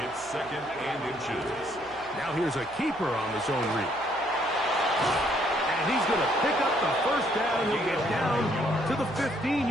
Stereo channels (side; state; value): right; noise; hum, 24 dB below the sound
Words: 2nd and inches. Now here's a keeper on the zone read. And he's going to pick up the first down. He'll get down to the